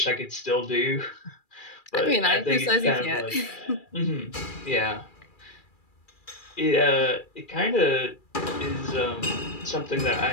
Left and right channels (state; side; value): late; right; 2.4 ms